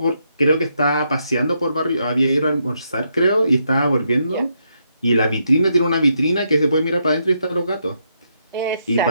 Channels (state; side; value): inverted; both; correlation -0.79